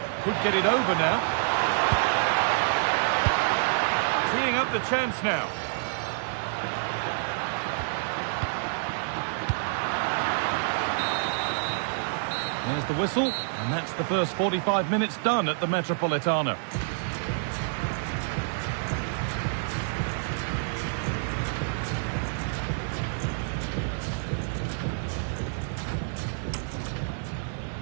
Could get it over now. Teeing up the chance now. There's the whistle, and that's the first 45 minutes done at the Metropolitano.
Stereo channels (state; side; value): silent; left; digital silence